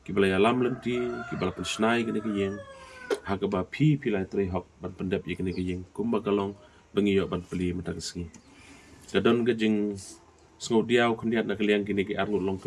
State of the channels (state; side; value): identical; both; correlation 1.00